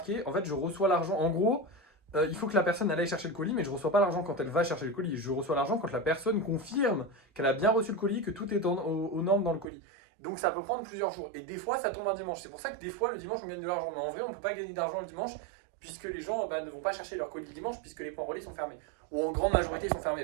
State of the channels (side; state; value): left; drops out; at 9.7 s